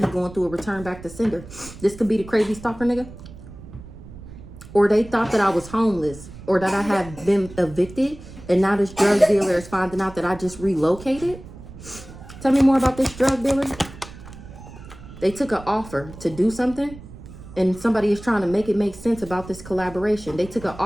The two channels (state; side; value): noise; right; rumble, 16 dB below the sound